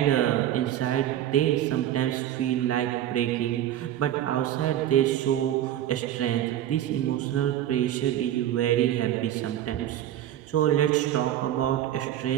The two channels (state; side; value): quieter; left; 11.9 dB